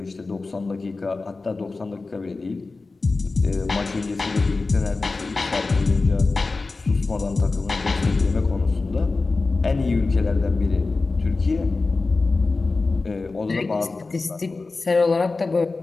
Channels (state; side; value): quieter; right; 3.7 dB